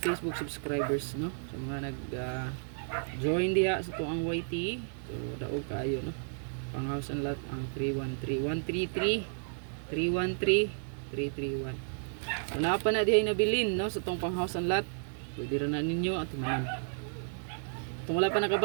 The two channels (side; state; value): left; silent; digital silence